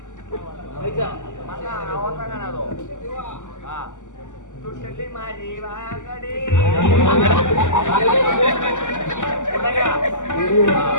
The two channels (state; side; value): late; right; 0.86 ms